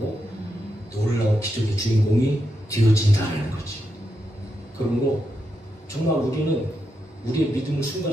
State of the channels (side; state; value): both; normal; correlation 0.84